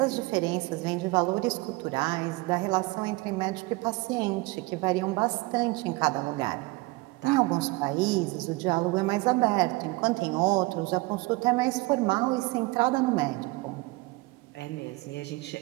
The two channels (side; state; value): left; quieter; 22.9 dB